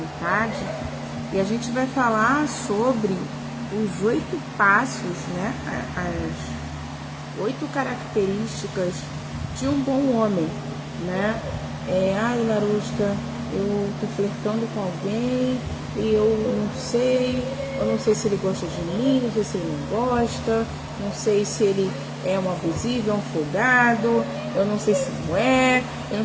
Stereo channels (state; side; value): identical; both; correlation 1.00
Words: E a gente vai falar sobre os 8 passos, né? As 8 características de um bom homem, né? Ai, Larusca, eu tô flertando com alguém e eu não sei se ele gosta de mim, não sei se ele não gosta, não sei se ele é um abusivo, é um folgado, eu não sei se não é, eu não